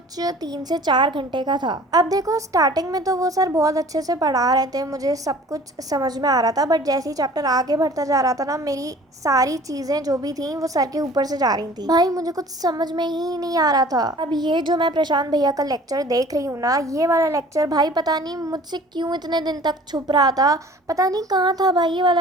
3 से 4 घंटे का था। अब देखो स्टार्टिंग में तो वो सर बहुत अच्छे से पढ़ा रहे थे, मुझे सब कुछ समझ में आ रहा था, बट जैसे ही चैप्टर आगे बढ़ता जा रहा था ना, मेरी सारी चीज़ें जो भी थी वो सर के ऊपर से जा रही थी। भाई मुझे कुछ समझ में ही नहीं आ रहा था। अब ये जो मैं प्रशांत भैया का लेक्चर देख रही हूँ ना, ये वाला लेक्चर भाई पता नहीं मुझसे क्यों इतने दिन तक छुप रहा था, पता नहीं कहाँ था भाई ये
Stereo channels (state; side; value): normal; both; correlation 0.48